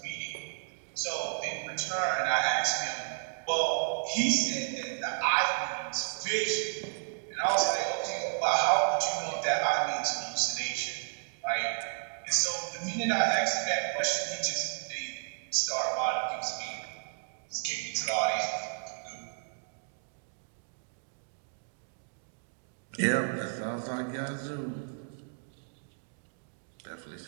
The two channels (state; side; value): silent; left; digital silence